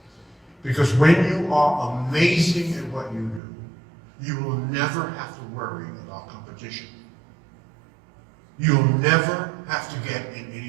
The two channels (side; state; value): left; drops out; at 3.4 s